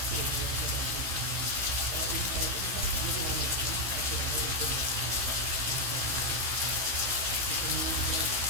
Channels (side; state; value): left; late; 16 ms